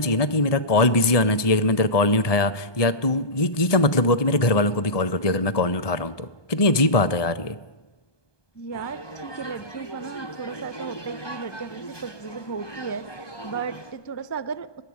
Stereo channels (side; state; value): right; late; 1.2 ms